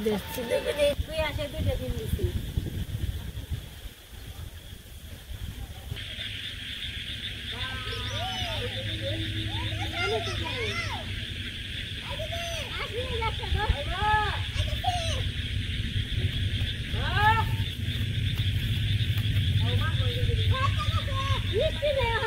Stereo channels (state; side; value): identical; both; correlation 1.00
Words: তুই আসে দুইটা দিন দিচ্ছি।